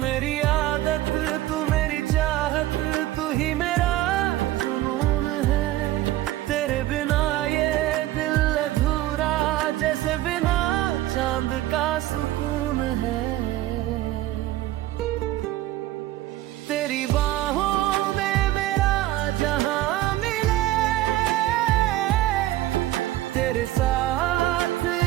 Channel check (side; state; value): left; quieter; 15.4 dB